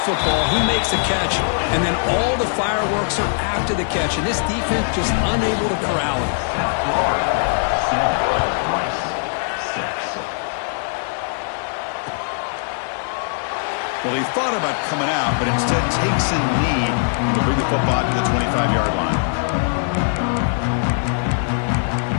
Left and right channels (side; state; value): right; silent; digital silence